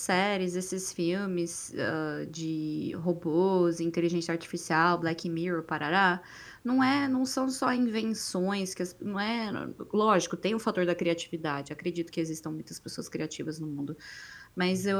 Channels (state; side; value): identical; both; correlation 1.00